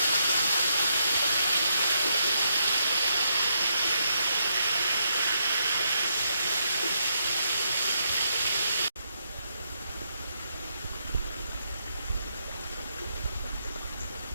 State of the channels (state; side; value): inverted; both; correlation -0.79